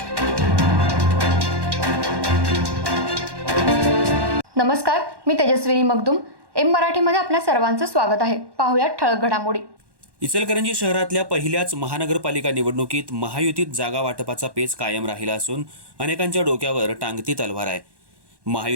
नमस्कार, मी तेजस्विनी मगदूम. एम मराठीमध्ये आपल्या सर्वांचं स्वागत आहे. पाहूयात ठळक घडामोडी. इचलकरंजी शहरातल्या पहिल्याच महानगरपालिका निवडणुकीत महायुतीत जागा वाटपाचा पेच कायम राहिला असून अनेकांच्या डोक्यावर टांगती तलवार आहे.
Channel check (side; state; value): left; late; 1.1 ms